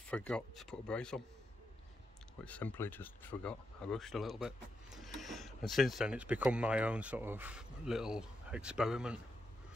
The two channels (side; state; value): both; normal; correlation 0.84